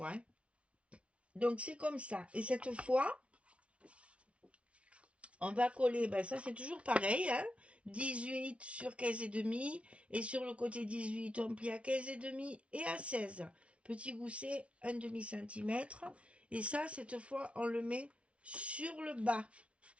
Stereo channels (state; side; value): late; left; 0.062 ms